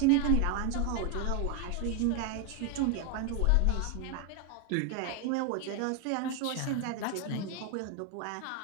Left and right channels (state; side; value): different; both; correlation 0.01